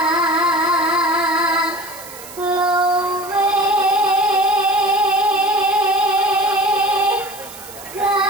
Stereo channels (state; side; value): noise; right; hiss, 16 dB below the sound